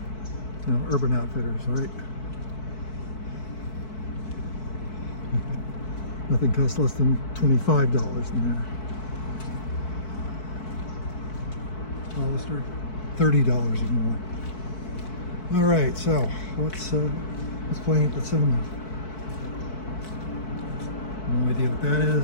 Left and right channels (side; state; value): right; late; 4.6 ms